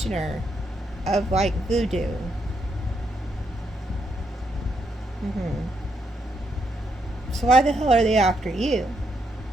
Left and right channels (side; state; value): both; normal; correlation 0.78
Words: of like voodoo. So why the hell are they after you?